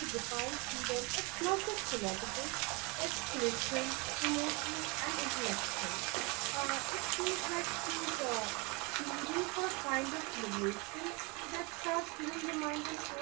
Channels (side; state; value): left; quieter; 28.9 dB